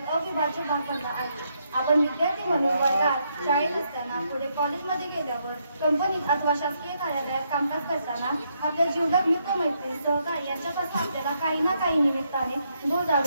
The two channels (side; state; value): both; inverted; correlation -0.77